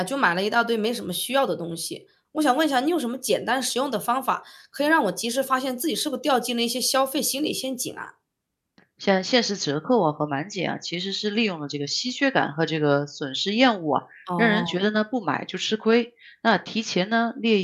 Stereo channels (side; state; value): both; identical; correlation 1.00